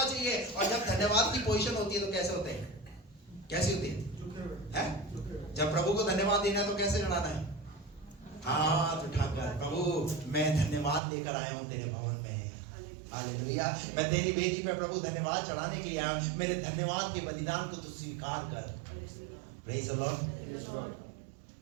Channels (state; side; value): drops out; left; at 11.0 s